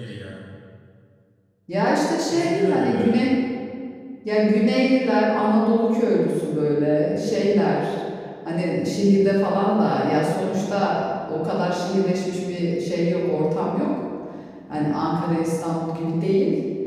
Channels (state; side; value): identical; both; correlation 1.00